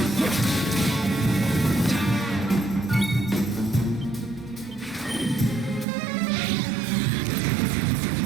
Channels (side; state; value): left; drops out; at 5.9 s